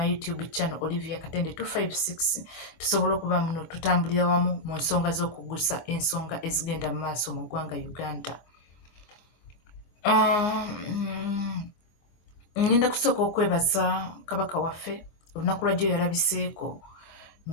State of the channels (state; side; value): late; right; 25 ms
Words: YouTube channel Olivia Katende 256 tusobole okuba muno tutambulira wamu mu nsonga z'okugusa ensonga ezigenda mu maaso mu ggwanga Uganda. Ngenda kusooka okwebaza kabaka waffe olunaku lwajjo yalabiseeko